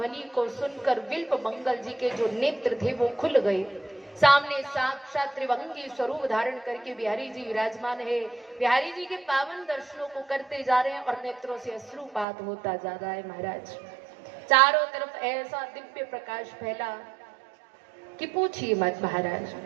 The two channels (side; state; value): left; drops out; at 12.2 s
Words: को सुनकर बिल्व मंगल जी के जो नेत्र थे वो खुल गए। सामने साक्षात त्रिभंगी स्वरूप धारण करके बिहारी जी विराजमान है। बिहारी जी के पावन दर्शनों को करते जा रहे हैं और नेत्रों से अश्रुपात होता जा रहा है महाराज। चारों तरफ ऐसा दिव्य प्रकाश फैला कि पूछिए मत महाराज।